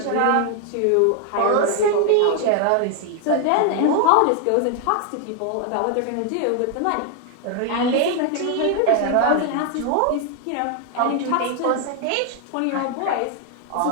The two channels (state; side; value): different; both; correlation 0.00